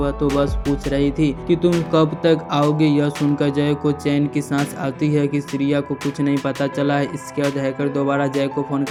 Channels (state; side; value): identical; both; correlation 1.00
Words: तो बस पूछ रही थी कि तुम कब तक आओगे। यह सुनकर जय को चैन की सांस आती है कि श्रिया को कुछ नहीं पता चला है। इसके बाद हैकर दोबारा जय को फोन